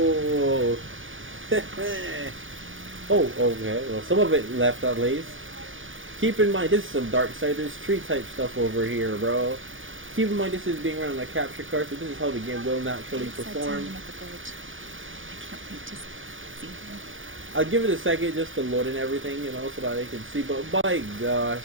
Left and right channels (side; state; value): left; late; 0.57 ms